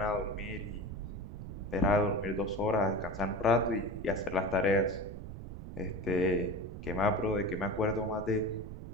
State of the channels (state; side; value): noise; right; rumble, 10 dB below the sound